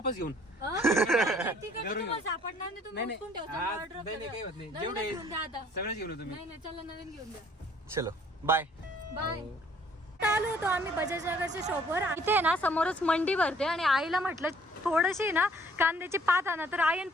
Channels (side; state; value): both; normal; correlation 0.59